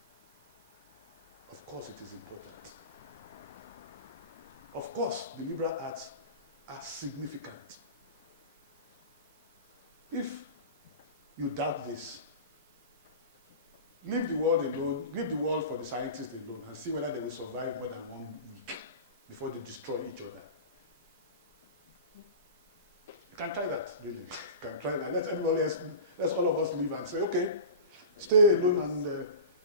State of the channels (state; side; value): inverted; both; correlation -0.32